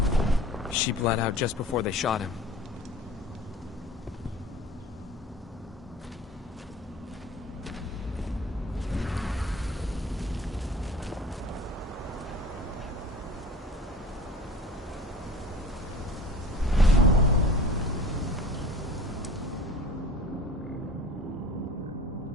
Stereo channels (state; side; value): normal; both; correlation 0.41